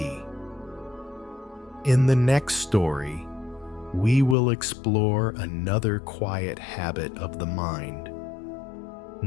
In the next story, we will explore another quiet habit of the mind.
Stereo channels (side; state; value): right; drops out; at 4.4 s